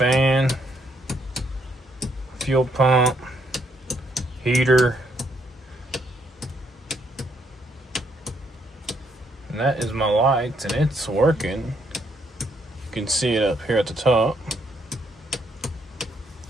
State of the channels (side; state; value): both; normal; correlation 0.72